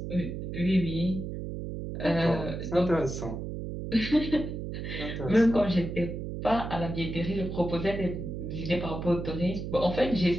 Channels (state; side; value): noise; right; hum, 6 dB below the sound